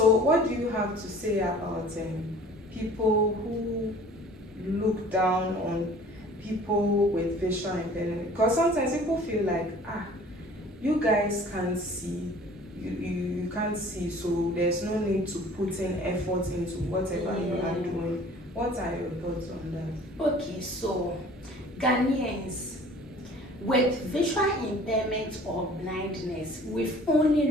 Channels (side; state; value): both; normal; correlation 0.49